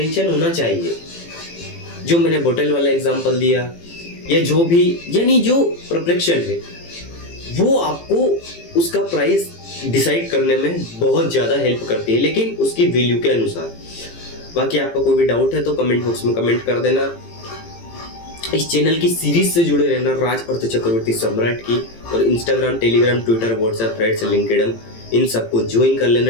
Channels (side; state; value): right; late; 18 ms